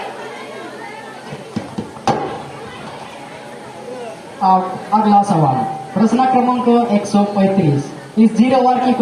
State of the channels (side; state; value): both; identical; correlation 1.00